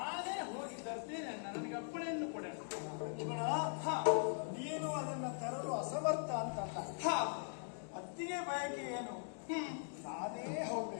ಹೋಗಿ ತರ್ತೇನೆ ಅಣ್ಣ. ನನಗೆ ಅಪ್ಪಣೆಯನ್ನು ಕೊಡೋಣ. ಲಕ್ಷ್ಮಣ, ನೀನು ಅದನ್ನ ತರಲು ಅಸಮರ್ಥ ಅಂತಲ್ಲ. ಅತ್ತಿಗೆ ಬಯಕೆ ಏನು? ನಾನೇ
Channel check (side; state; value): right; silent; digital silence